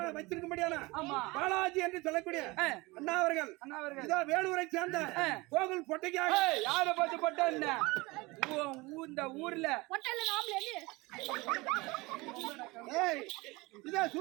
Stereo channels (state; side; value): quieter; left; 23.2 dB